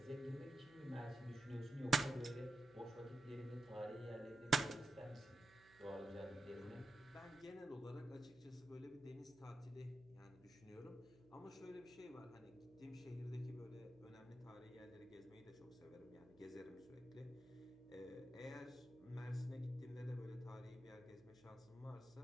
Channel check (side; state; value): right; noise; hum, 24 dB below the sound